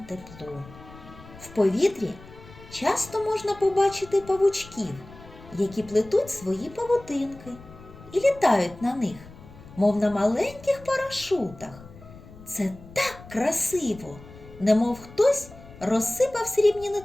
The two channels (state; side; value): noise; left; rumble, 19 dB below the sound